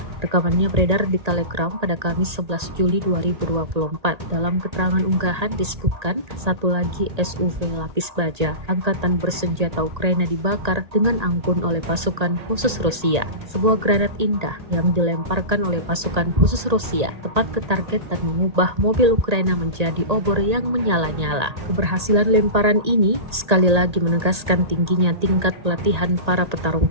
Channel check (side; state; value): left; late; 1.8 ms